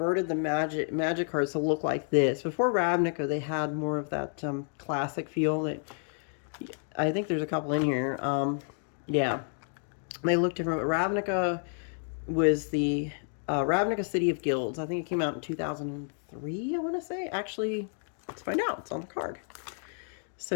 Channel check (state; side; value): silent; right; 58 dB below the other